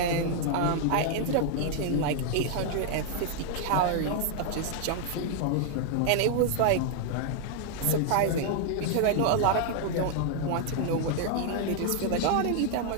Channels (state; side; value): different; both; correlation 0.00